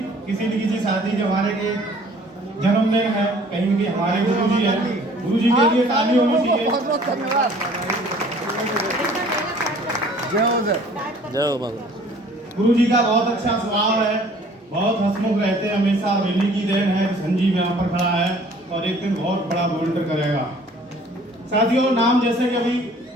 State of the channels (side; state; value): both; normal; correlation 0.53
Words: किसी न किसी साथी जो हमारे के जन्म में है, कहीं न कहीं हमारे गुरुजी हैं। गुरुजी के लिए ताली होनी चाहिए। बहुत बहुत धन्यवाद। जय हो बाबा। गुरुजी का बहुत अच्छा स्वभाव है, बहुत हंसमुख रहते हैं हमेशा। इन्हीं की देन है संजीव यहाँ पर खड़ा है और एक दिन बहुत बड़ा वोल्टर करेगा। साथियों, नाम जैसे कि अभी